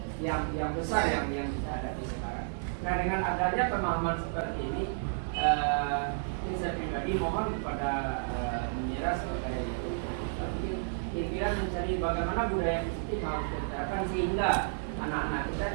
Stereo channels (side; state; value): left; silent; digital silence